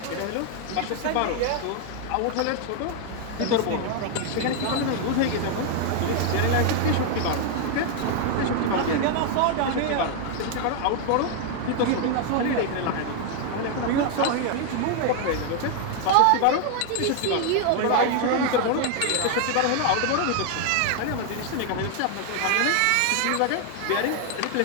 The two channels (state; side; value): different; both; correlation 0.00